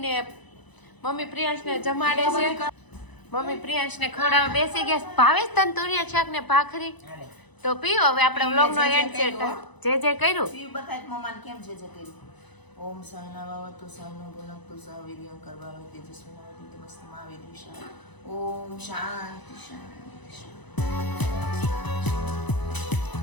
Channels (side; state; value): right; late; 1.0 ms